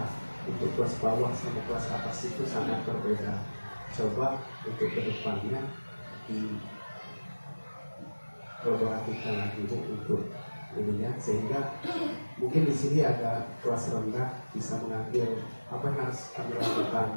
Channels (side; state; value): both; inverted; correlation -1.00